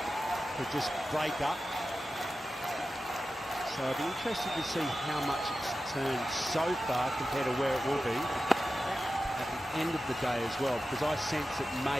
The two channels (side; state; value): both; normal; correlation 0.93